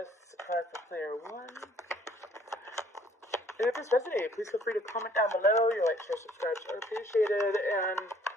A card for player 1. And if this resonated, please feel free to comment down below. Your like, share, subscribe are appreciated. And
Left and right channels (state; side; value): normal; both; correlation 0.59